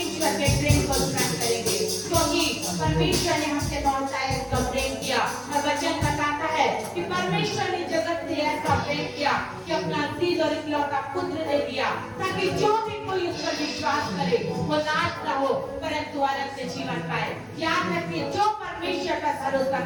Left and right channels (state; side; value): identical; both; correlation 1.00